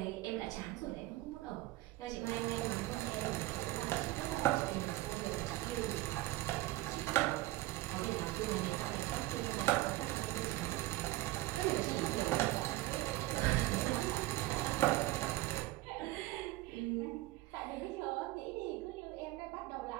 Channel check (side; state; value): left; quieter; 17.7 dB